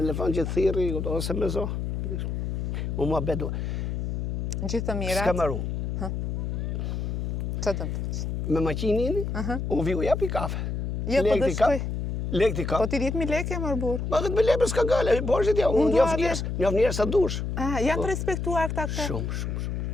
që thiri, ose me zo. U mua bedu. Gjithë të mirat. S'ka maru. Që të më të? Me maqinin, unë vi u japi kafe. Jo, po dhe shkoj. Lek t'i Po kap. ti 10.000 lekë më bur. Ma këtë me lepër s'ka gale, borshit ja, unë njof njerës sa dush. Janë të respektuar këta këta. Shumë.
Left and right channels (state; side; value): noise; left; hum, 2 dB below the sound